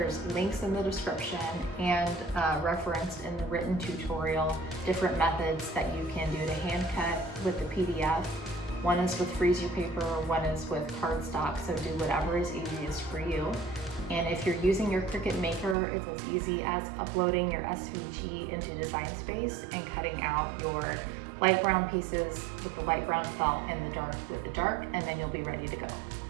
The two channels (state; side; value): drops out; left; at 15.8 s